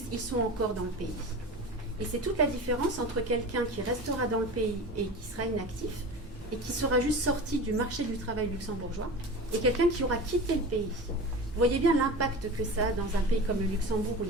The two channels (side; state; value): both; normal; correlation 0.32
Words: ils sont encore dans le pays. Et c'est toute la différence entre quelqu'un qui restera dans le pays et qui sera inactif, et qui sera juste sorti du marché du travail luxembourgeois, et quelqu'un qui aura quitté le pays. Vous voyez bien l'impact que ça a dans un pays comme le Luxembourg, où